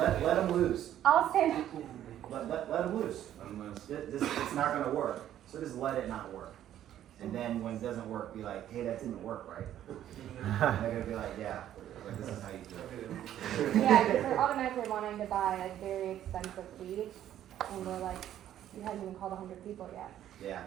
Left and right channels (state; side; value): quieter; left; 11.5 dB